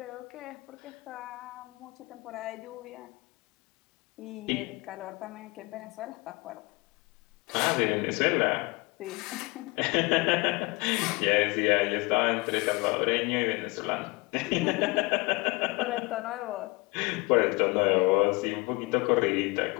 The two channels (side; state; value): right; quieter; 25.8 dB